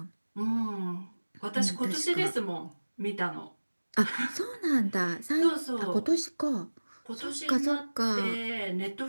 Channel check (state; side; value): inverted; both; correlation -1.00